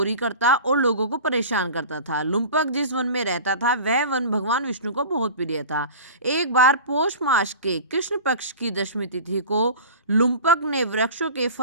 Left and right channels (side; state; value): both; inverted; correlation -0.36